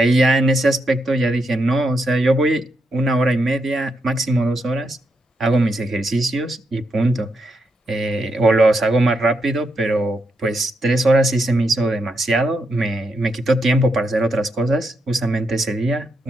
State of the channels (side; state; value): both; normal; correlation 0.81